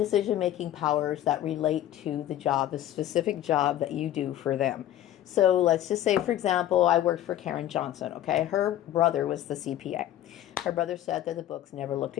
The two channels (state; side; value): quieter; right; 12.4 dB